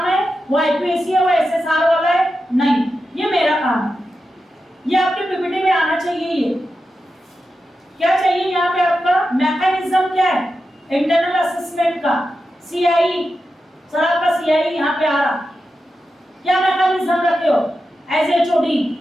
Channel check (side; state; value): both; normal; correlation 0.90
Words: है, वो आईपीएससी है, वो एसएसआर वाला है, नहीं, ये मेरा काम है। ये आपके पीपीटी में आना चाहिए। ये क्या चाहिए यहाँ पे? आपका मैकेनिज्म क्या है इंटरनल असेसमेंट का? सीआई, सर आपका सीआई यहाँ पे आ रहा, क्या मैकेनिज्म रखे हो एज एचओडी?